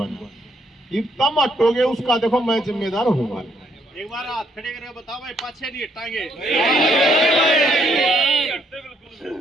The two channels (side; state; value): both; normal; correlation 0.71